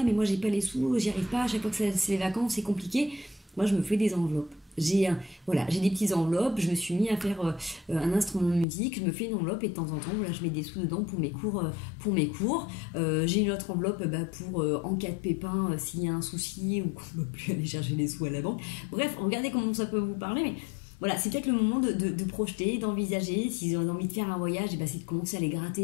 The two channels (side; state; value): right; drops out; at 8.7 s